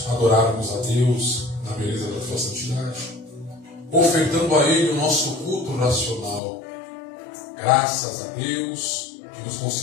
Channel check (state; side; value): drops out; right; at 6.4 s